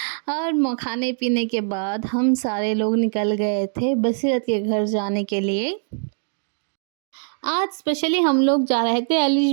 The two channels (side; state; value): left; silent; digital silence